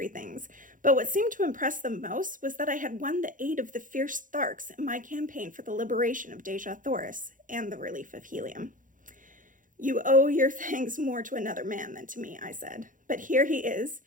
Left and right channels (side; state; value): left; late; 0.38 ms